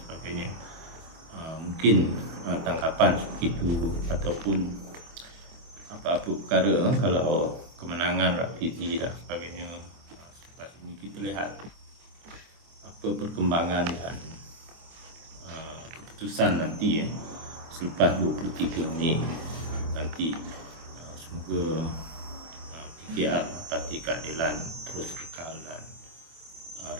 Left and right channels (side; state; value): left; late; 25 ms